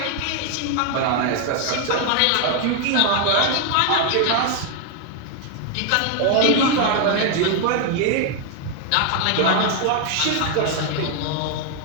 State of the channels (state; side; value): different; both; correlation 0.00